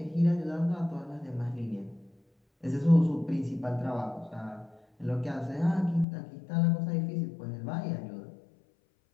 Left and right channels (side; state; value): right; drops out; at 6.1 s